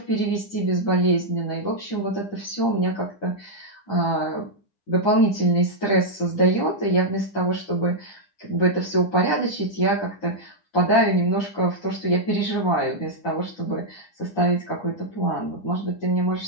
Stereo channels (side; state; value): right; late; 9.8 ms